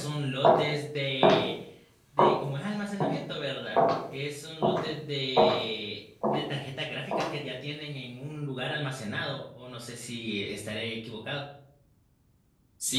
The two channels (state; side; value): identical; both; correlation 1.00